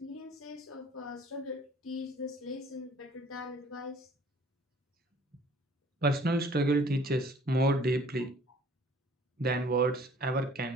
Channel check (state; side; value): normal; both; correlation 0.54